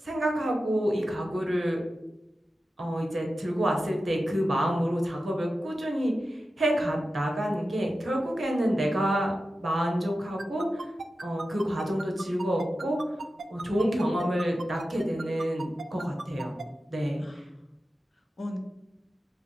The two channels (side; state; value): both; normal; correlation 0.93